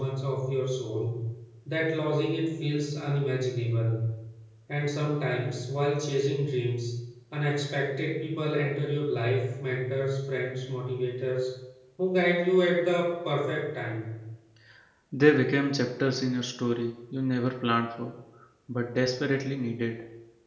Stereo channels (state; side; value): identical; both; correlation 1.00